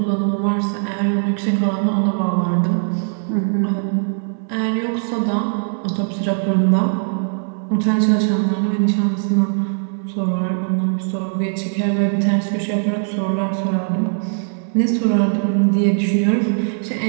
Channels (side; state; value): left; silent; 66 dB below the other